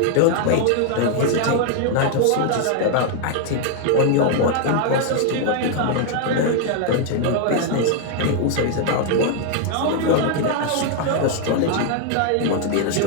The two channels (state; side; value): different; both; correlation 0.00